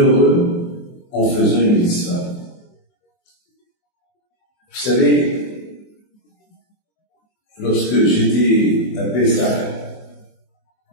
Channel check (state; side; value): late; right; 24 ms